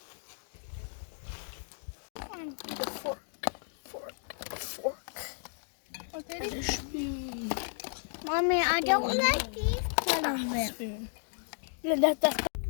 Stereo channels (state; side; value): silent; right; digital silence